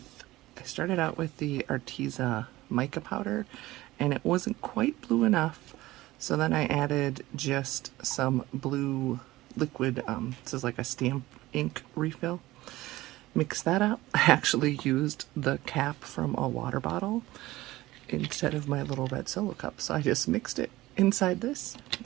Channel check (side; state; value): left; quieter; 17.8 dB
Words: started out with the Arteza mica powder, and it wasn't quite blue enough, so then I added just some blue liquid, this is like a stamp ink refill. Mix that up. I actually used the cap from a water bottle instead of my little red solo cup, so I just mixed it inside this